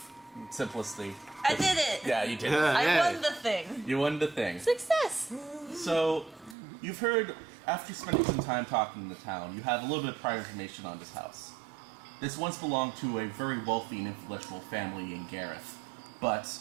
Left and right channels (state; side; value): drops out; left; at 6.6 s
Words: simplicity. I did it! Yeah, you did. I won the thing. You won the thing. Success! So, you've heard, after spending some time talking in the town, you have a little bit of prior information on this house. This once belonged to a very wealthy and influential family in Gareth, but